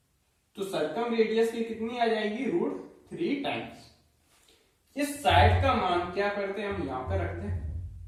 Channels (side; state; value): both; identical; correlation 1.00